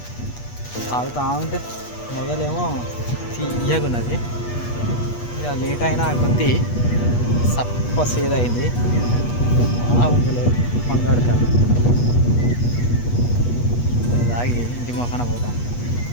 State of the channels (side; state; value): right; late; 8.3 ms